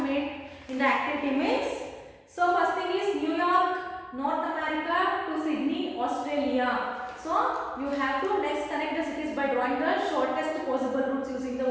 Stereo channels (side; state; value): both; identical; correlation 1.00